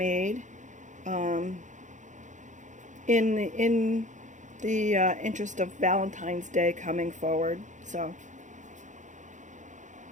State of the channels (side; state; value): left; late; 0.36 ms